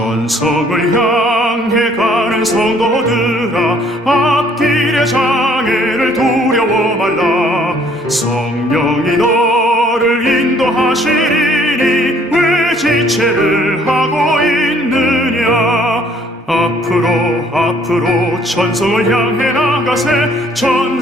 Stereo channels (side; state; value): both; normal; correlation 0.61